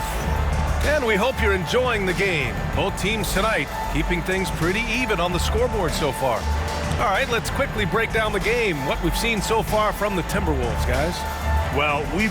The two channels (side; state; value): both; identical; correlation 1.00